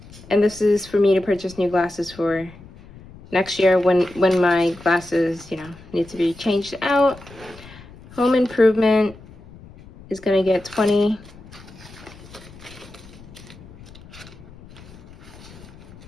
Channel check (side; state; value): left; noise; rumble, 20 dB below the sound